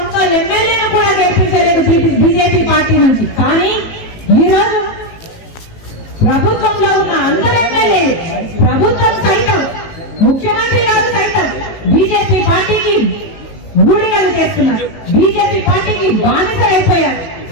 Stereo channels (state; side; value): late; right; 18 ms